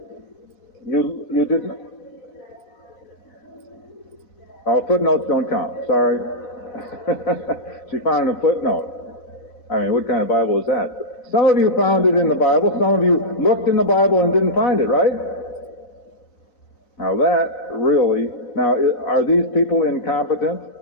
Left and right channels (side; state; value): right; late; 4.1 ms